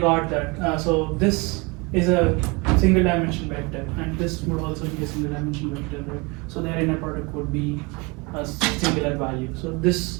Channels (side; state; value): left; quieter; 27.5 dB